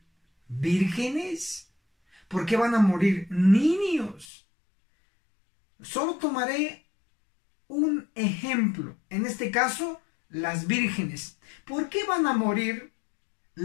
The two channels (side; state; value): right; drops out; at 4.2 s